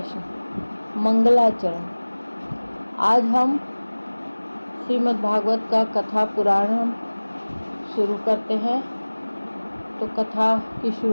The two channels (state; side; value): inverted; both; correlation -1.00